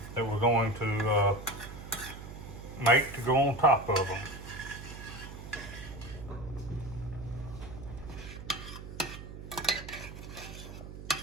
that we're going to make to go on top of them.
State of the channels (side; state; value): right; noise; hum, 12 dB below the sound